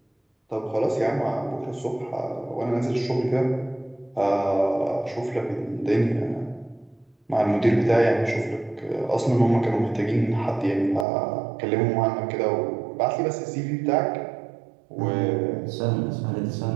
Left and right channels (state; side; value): drops out; left; at 11.1 s